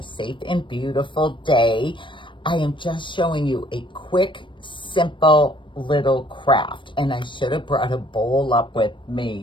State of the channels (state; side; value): late; right; 0.24 ms